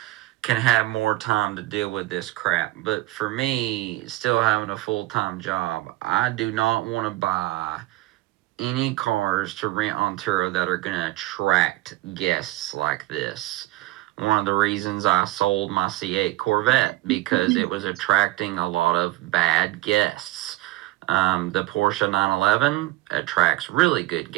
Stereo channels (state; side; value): quieter; left; 17.6 dB